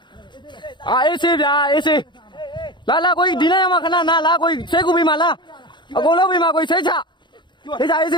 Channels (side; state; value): right; late; 0.22 ms